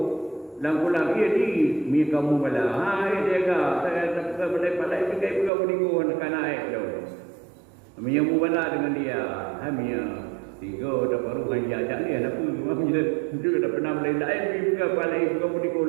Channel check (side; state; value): left; drops out; at 5.5 s